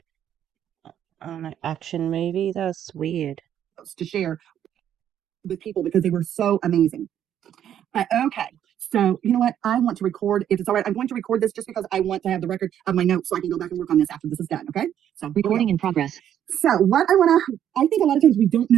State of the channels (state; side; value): quieter; left; 10.2 dB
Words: action movie. That's weird. To share with people because they were so amazing. Okay. So, you know what? I want to record, if it's all right, I'm going to record this just because I want to have the record of my notes so I can go back and work on this after this is done. Okay. So, Recording in progress. So, what I think a lot of times we don't